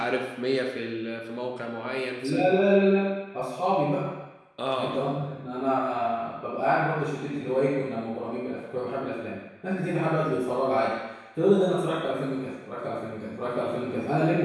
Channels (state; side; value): identical; both; correlation 1.00